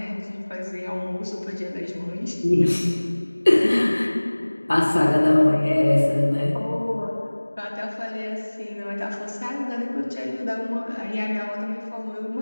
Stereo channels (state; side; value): inverted; both; correlation -1.00